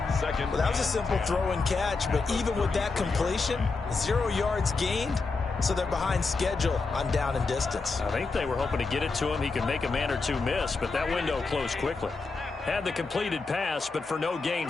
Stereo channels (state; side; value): quieter; right; 4.1 dB